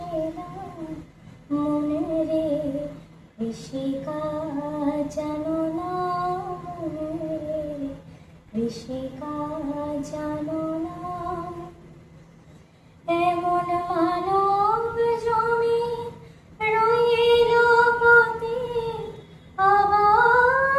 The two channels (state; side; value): identical; both; correlation 1.00